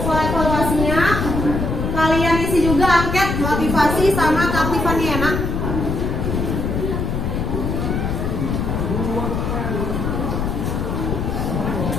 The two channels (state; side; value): noise; left; rumble, 1 dB below the sound